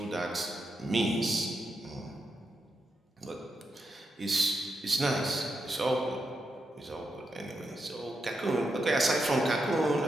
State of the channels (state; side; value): normal; both; correlation 0.85